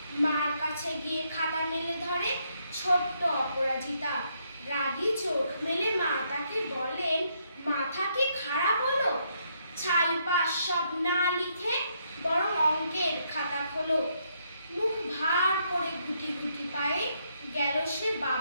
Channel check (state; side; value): inverted; both; correlation -0.74